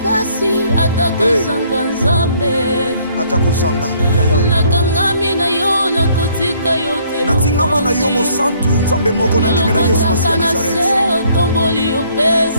pasi atakozanga nzambe. Atakozanga yaya. Nakangami na yo na kotika yote. Natingama na yo mo santu nzambe moko na ndimela Yesu Masiya Nazareth. Otomboli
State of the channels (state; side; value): inverted; both; correlation -0.63